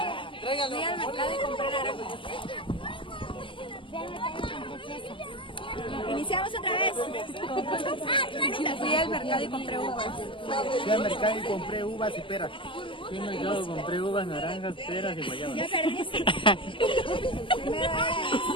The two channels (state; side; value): late; right; 0.25 ms